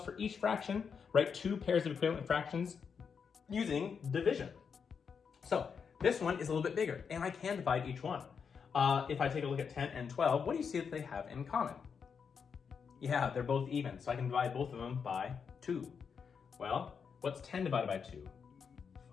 for each fraction, write 2 pairs of equivalent fractions using division. So this one is a little bit bigger, and I can divide each one. If I take a look at 10 and 12, what do you see that they have in common? Yeah, they're both even, so I can divide both of them by 2. Well, what's 10 divided by 2?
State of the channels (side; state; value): right; quieter; 6.3 dB